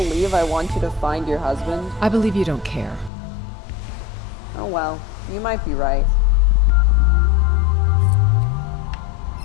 I want you to find your husband? I believe you don't care. Oh well, you might be right.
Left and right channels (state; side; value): drops out; right; at 3.1 s